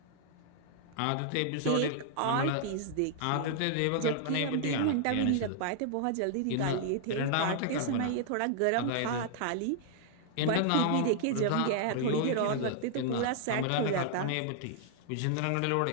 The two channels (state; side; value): different; both; correlation 0.00